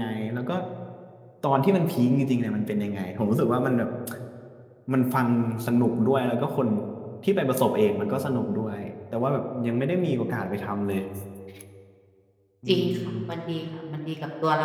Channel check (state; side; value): identical; both; correlation 1.00